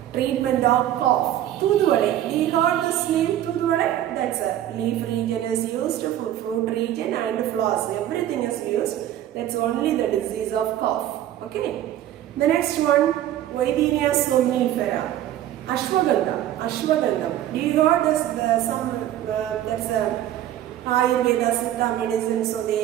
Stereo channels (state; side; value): quieter; left; 12.3 dB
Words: treatment of cough. Thuduvadai. We got this name Thuduvadai. That's a leaf region is used for fruit region and flowers. Everything is used. That's only the disease of cough. Okay. The next one, Videnia somnifera. Ashwagandha. Ashwagandha. We got this that's a Ayurveda Siddha medicine, so